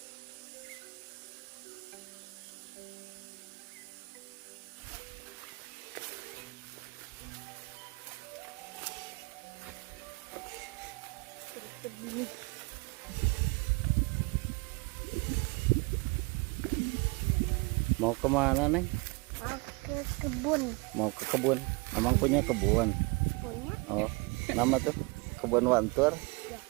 Mau kemana Neng? Mau ke kebun. Mau ke kebun. Emang punya kebun? Punya? Oh, nama tuh kebun Wantur.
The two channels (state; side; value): quieter; left; 27.7 dB